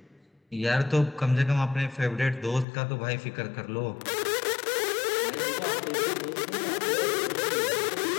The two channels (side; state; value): right; drops out; at 2.7 s